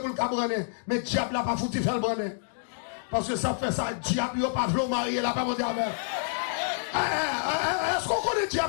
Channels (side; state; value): right; silent; digital silence